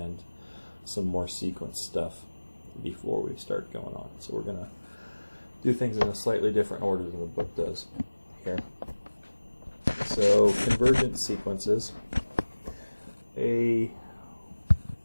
some more sequence stuff before we start going on. So we're going to do things in a slightly different order than the book does here. So convergent sequences. A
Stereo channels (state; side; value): inverted; both; correlation -1.00